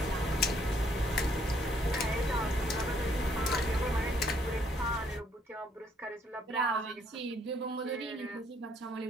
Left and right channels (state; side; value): normal; both; correlation 0.67